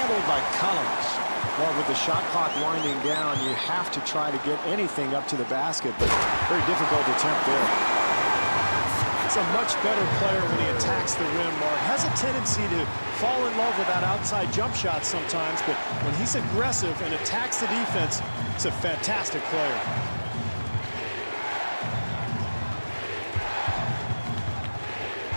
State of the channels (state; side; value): inverted; both; correlation -1.00